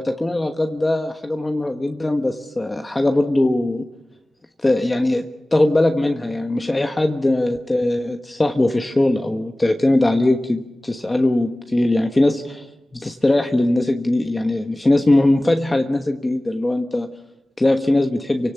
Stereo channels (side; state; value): both; normal; correlation 0.98